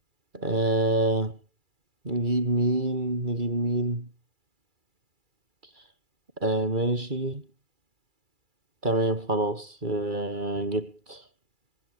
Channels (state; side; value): late; left; 2.3 ms